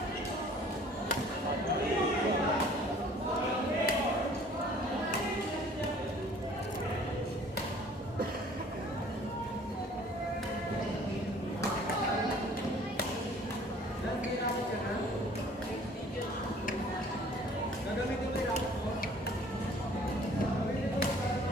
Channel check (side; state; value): both; normal; correlation 0.53